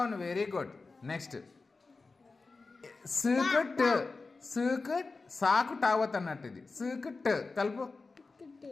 Very good. నెక్స్ట్ సూకుట్. సూకుట్ సాకు టావత్ అన్నట్టు. ఇది సూకుట్ కలుపు.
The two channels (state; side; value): quieter; right; 3.9 dB